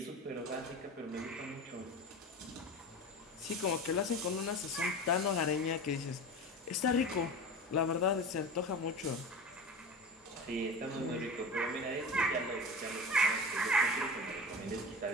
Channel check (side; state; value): both; normal; correlation 0.30